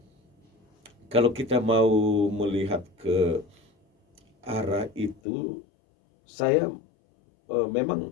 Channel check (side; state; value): right; drops out; at 5.2 s